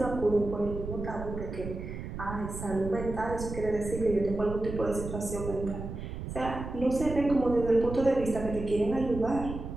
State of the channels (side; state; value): right; noise; rumble, 8 dB below the sound